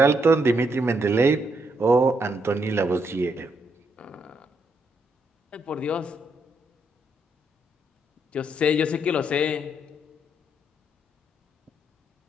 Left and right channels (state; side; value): normal; both; correlation 0.76